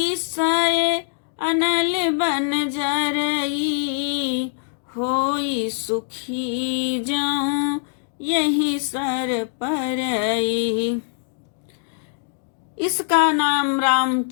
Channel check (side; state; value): right; silent; digital silence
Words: अनल बन जरई, होई सुखी जाऊं यही सर परई। इसका नाम